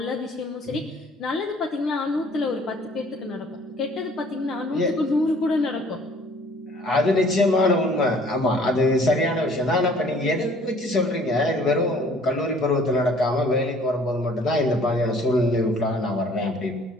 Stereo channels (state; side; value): normal; both; correlation 0.55